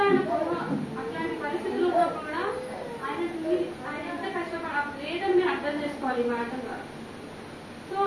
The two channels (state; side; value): identical; both; correlation 1.00